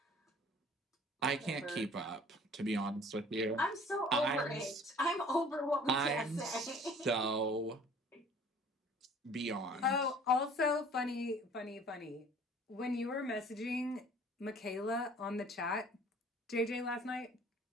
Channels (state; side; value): normal; both; correlation 0.51